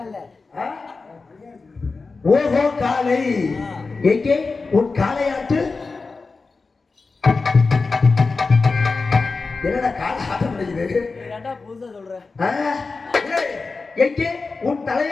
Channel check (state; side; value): quieter; right; 4.1 dB